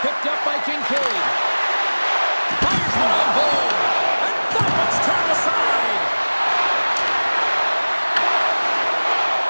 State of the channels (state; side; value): inverted; both; correlation -1.00